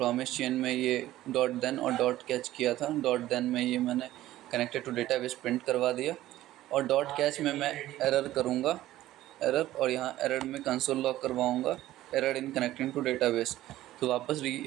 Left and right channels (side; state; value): left; quieter; 14.9 dB